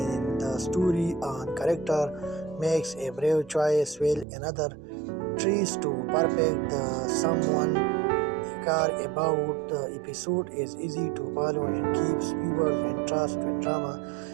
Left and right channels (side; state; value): left; drops out; at 4.2 s